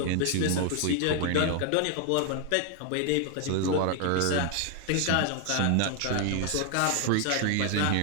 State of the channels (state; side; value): different; both; correlation 0.00